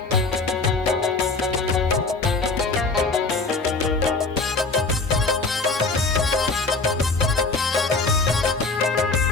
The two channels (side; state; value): right; quieter; 3.8 dB